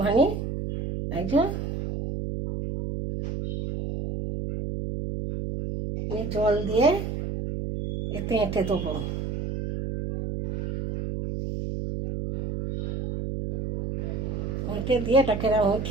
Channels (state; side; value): noise; right; hum, 4 dB below the sound